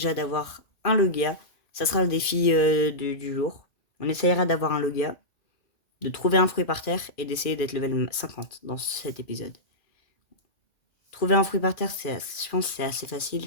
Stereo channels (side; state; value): right; late; 2.4 ms